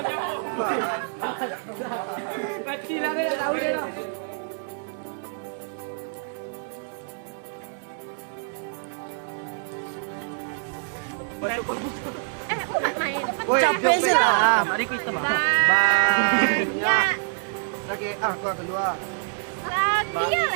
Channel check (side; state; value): left; silent; digital silence